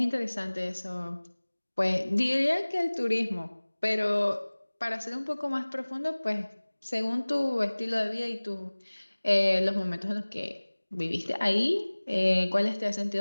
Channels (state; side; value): inverted; both; correlation -1.00